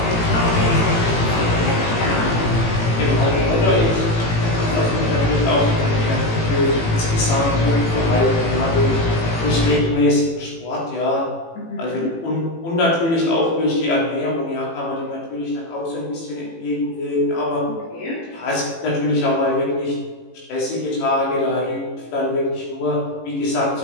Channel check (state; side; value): late; right; 18 ms